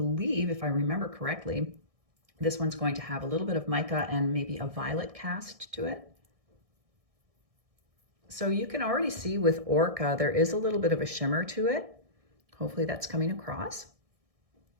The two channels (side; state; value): left; late; 1.6 ms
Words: if I remember correctly, This one's going to have a little bit of mica and maybe a violet cast to it. So you can already see with ORCA, there is a little bit of a shimmer to it. Hopefully that's coming across.